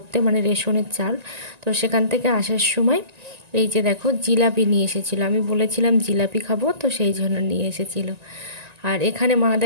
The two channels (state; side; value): late; left; 1.9 ms